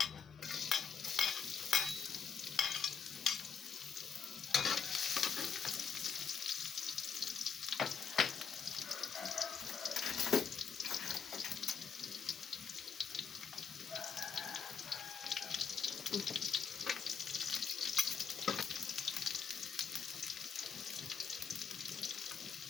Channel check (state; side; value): quieter; right; 6.3 dB